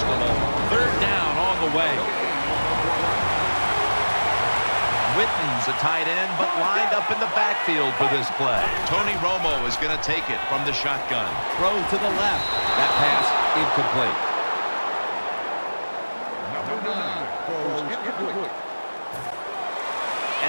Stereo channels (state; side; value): inverted; both; correlation -1.00